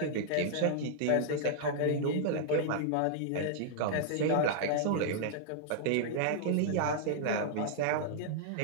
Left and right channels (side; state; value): both; different; correlation -0.01